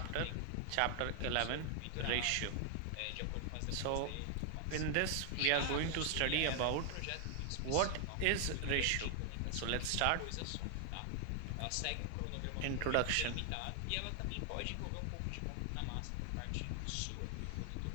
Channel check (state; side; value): different; both; correlation 0.00